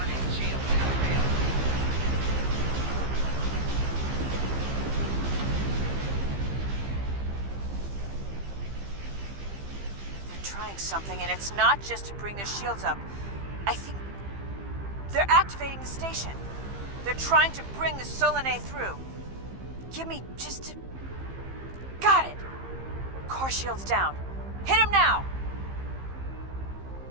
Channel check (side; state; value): left; late; 15 ms